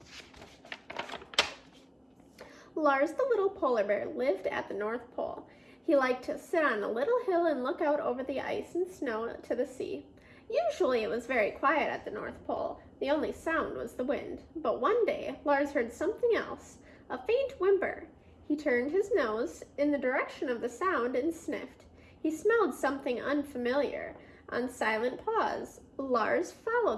Lars the little polar bear lived at the North Pole. He liked to sit on a little hill and look out over the ice and snow to the sea. Usually it was very quiet at the North Pole. The only sound was the wind. But one day, Lars heard something else, a faint whimper. He turned his nose in the direction of the sound and sniffed. He smelled something unfamiliar. On silent pause, Lars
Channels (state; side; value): identical; both; correlation 1.00